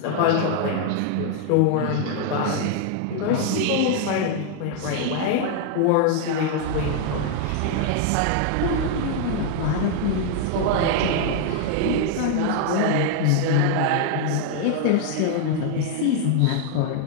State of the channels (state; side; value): different; both; correlation 0.00